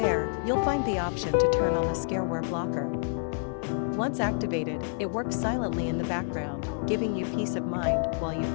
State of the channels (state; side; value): silent; right; 59 dB below the other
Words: you'll find the option to turn on the Scareware blocker. Once activated, it works silently in the background, giving you peace of mind while you